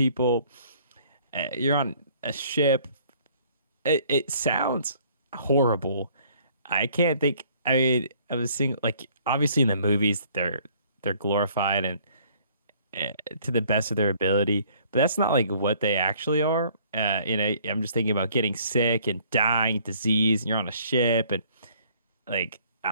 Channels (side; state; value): both; inverted; correlation -0.59